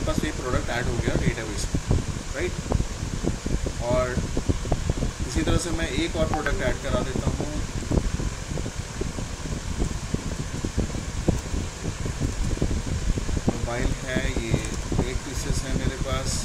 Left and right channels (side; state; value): both; identical; correlation 1.00